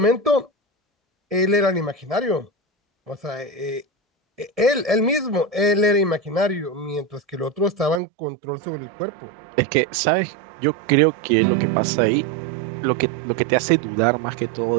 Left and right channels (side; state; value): left; drops out; at 8.0 s